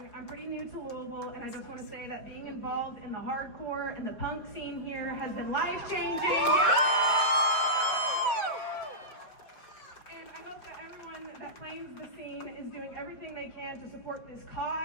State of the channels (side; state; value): right; late; 5.0 ms